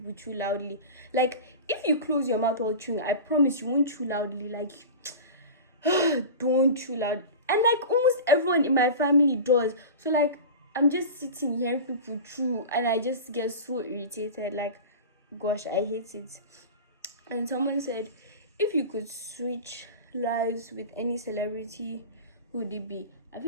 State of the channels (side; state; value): both; inverted; correlation -0.31